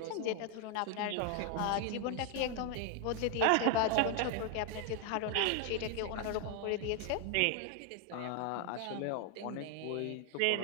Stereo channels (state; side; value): different; both; correlation 0.00